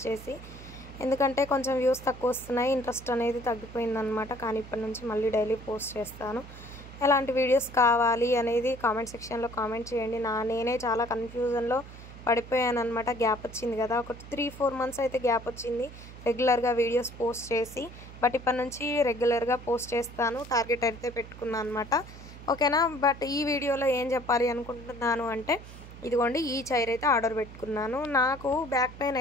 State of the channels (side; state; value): right; noise; hum, 16 dB below the sound